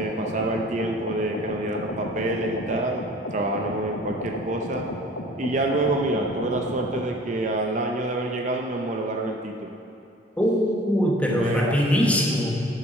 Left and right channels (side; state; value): both; normal; correlation 0.48